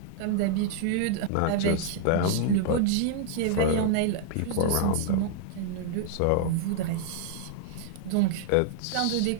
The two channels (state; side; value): different; both; correlation 0.00